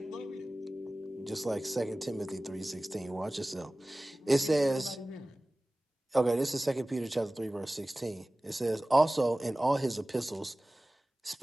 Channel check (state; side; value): normal; both; correlation 0.97